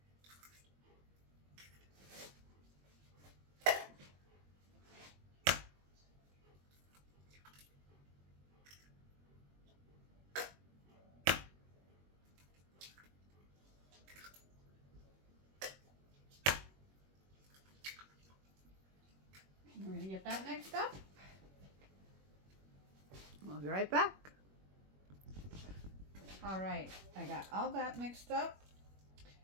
We're going to get that mixed up. We'll be right back. All right, I got all that mixed up.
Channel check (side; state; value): left; late; 21 ms